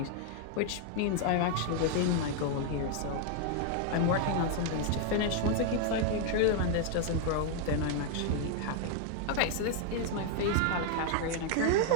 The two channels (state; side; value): different; both; correlation 0.00